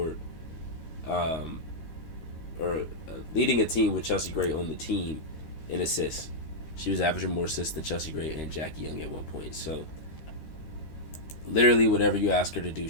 leading a team with Chelsea Gray on the team in assists. She was averaging more assists than Chelsea Gray and Jackie Young at one point. So, literally whatever you ask her to do,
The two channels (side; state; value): right; late; 13 ms